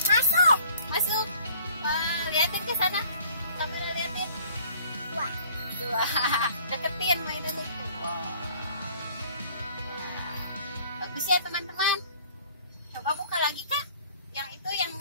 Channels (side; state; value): both; inverted; correlation -0.54